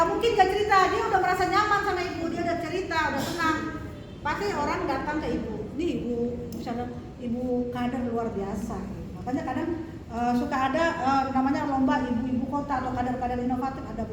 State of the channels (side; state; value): both; identical; correlation 1.00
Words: mungkin nggak cerita. Dia udah merasa nyaman sama ibu, dia udah cerita, udah tenang. Pasti orang datang ke ibu. Nih ibu, misalnya ibu kader luar biasa. Makanya kadang suka ada namanya lomba ibu-ibu kota atau kader-kader inovatif, ada